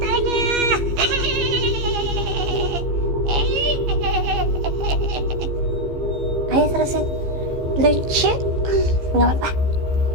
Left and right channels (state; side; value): late; left; 15 ms